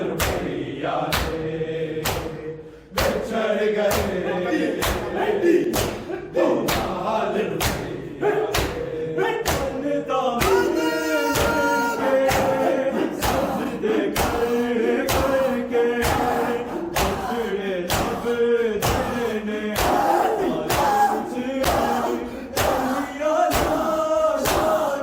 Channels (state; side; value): identical; both; correlation 1.00